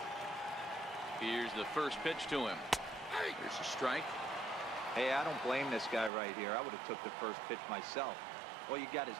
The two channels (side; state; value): left; drops out; at 6.1 s